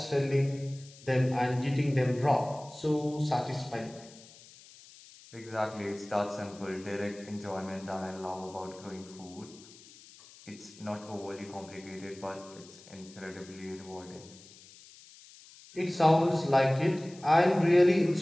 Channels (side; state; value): left; noise; hiss, 21 dB below the sound